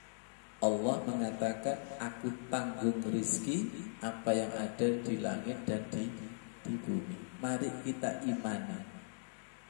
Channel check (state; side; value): silent; right; digital silence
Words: Allah mengatakan, aku tanggung rizki apa yang ada di langit dan di bumi. Mari kita imani.